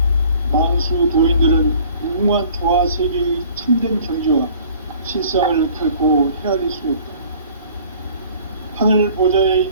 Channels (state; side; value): inverted; both; correlation -0.51